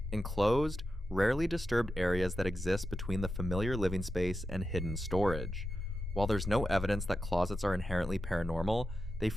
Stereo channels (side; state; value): both; normal; correlation 0.90